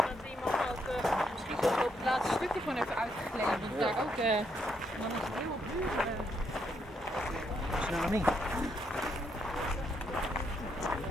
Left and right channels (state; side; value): normal; both; correlation 0.76